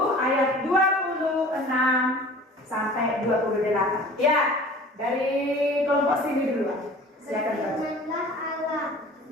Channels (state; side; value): normal; both; correlation 0.44